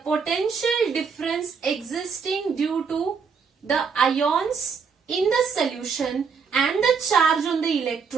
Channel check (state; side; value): quieter; left; 5.8 dB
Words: potential difference existing due to the ions in the solution and the charge on the